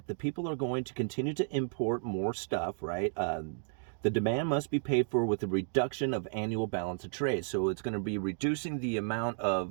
the people are going to continue to import more stuff, right? The demand must be paid for with a reduction of annual balance of trade. So it's going to be reducing the amount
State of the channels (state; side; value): silent; left; digital silence